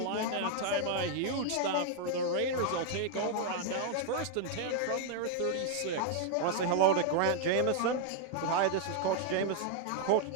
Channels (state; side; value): different; both; correlation 0.00